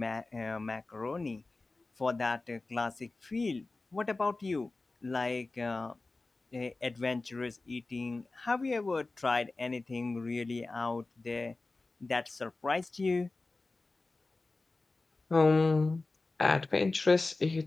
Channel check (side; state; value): right; quieter; 3.4 dB